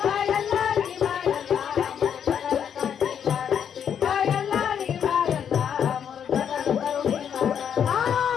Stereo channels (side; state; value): right; quieter; 8.3 dB